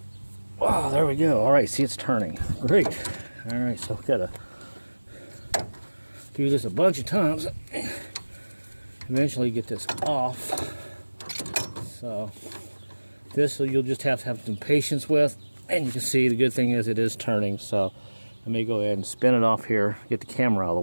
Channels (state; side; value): inverted; both; correlation -1.00